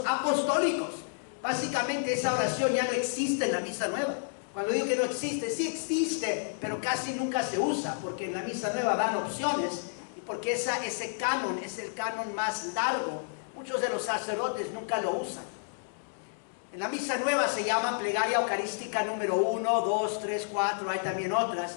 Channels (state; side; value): silent; right; digital silence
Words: apostólicos. Básicamente esa oración ya no existe en la misa nueva. Cuando digo que no existe, sí existe, pero casi nunca se usa, porque en la misa nueva dan opciones, y porque ese canon es el canon más largo. Muchos de los sacerdotes nunca lo usan. En la misa nueva se llama plegaria eucarística número 1, 2, 3, 4, hay también otras,